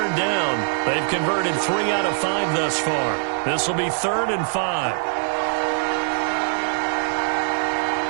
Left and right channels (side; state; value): left; silent; digital silence